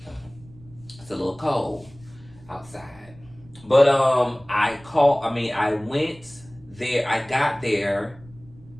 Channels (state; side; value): noise; right; rumble, 23 dB below the sound